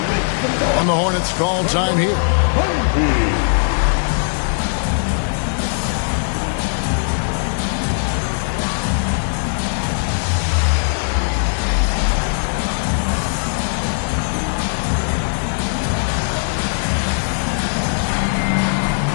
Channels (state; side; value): silent; right; digital silence